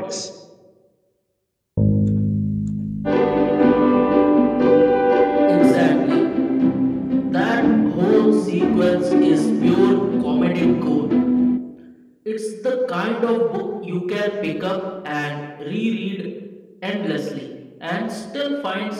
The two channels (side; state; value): both; identical; correlation 1.00